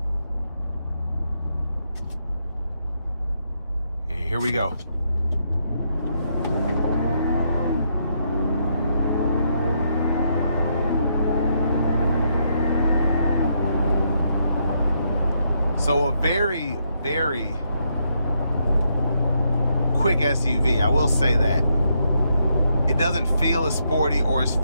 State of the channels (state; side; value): inverted; both; correlation -0.77